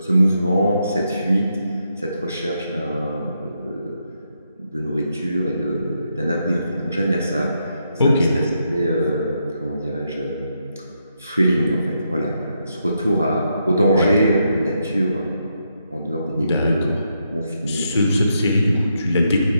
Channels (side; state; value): both; inverted; correlation -0.80